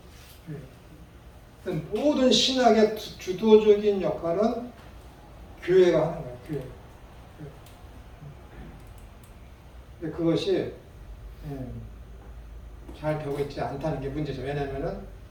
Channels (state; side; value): identical; both; correlation 1.00